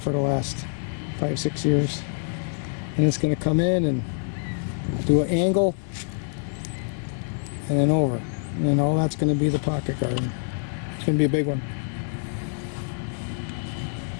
the last 5-6 years. And it's going to come in and do an angle and then over, and then all that's going to be the pocket garden. It's going to be a big one.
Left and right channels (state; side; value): silent; right; digital silence